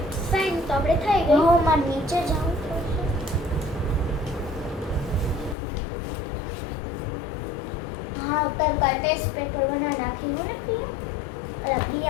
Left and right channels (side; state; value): right; drops out; at 5.6 s